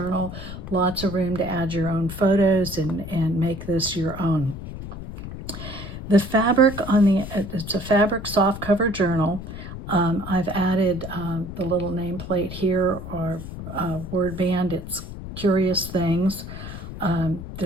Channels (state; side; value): noise; left; rumble, 10 dB below the sound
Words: lots of room to add your own photos and make this your own. The fabric it's a fabric soft cover journal. I've added the little nameplate here or word band. It's Curious Things.